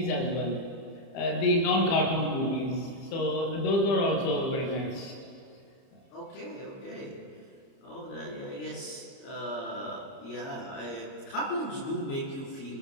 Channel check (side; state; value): right; late; 30 ms